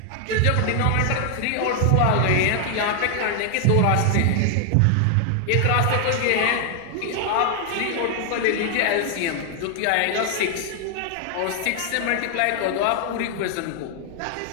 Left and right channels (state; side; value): different; both; correlation 0.00